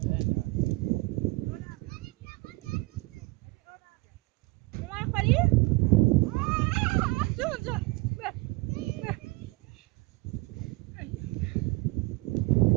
اومد خالی؟ جون جون.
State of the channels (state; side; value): quieter; left; 23.6 dB